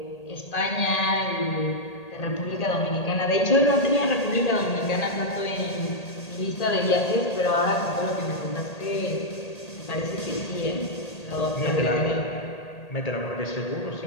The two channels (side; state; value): right; late; 1.8 ms